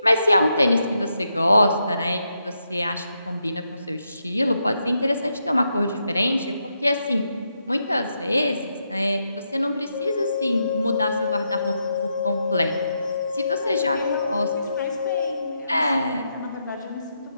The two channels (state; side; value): inverted; both; correlation -0.82